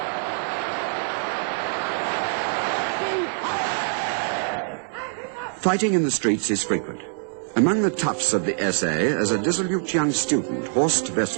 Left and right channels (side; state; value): left; silent; 62 dB below the other